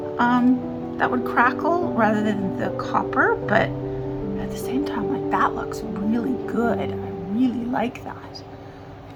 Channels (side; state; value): both; identical; correlation 1.00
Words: that would crackle rather than the copper, but at the same time, like, that looks really good. I really like that.